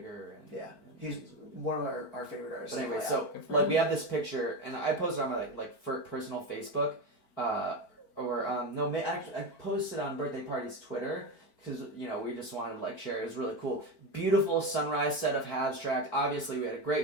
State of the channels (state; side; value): late; right; 4.5 ms